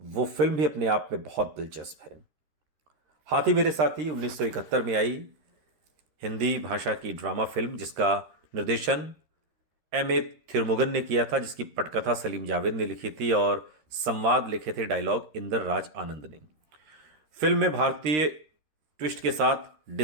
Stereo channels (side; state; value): left; late; 13 ms